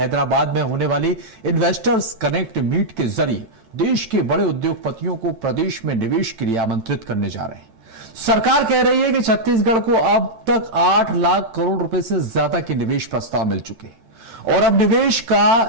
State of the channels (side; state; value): left; late; 13 ms